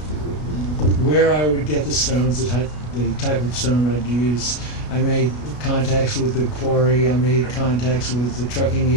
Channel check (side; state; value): right; late; 33 ms